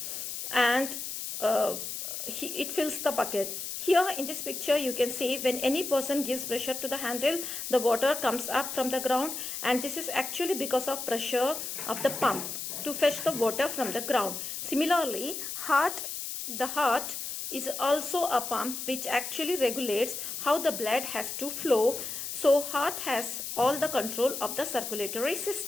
and it fills the bucket. Here in this picture you can see when any person gives pressure to the handle, the water comes up from the ground, and this is actually because of pressure of the pump to fetch the water from the ground. Similarly, the heart is also a pump which actually regulates how the blood has to flow. So heart has all the control of the circulatory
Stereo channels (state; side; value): noise; left; hiss, 6 dB below the sound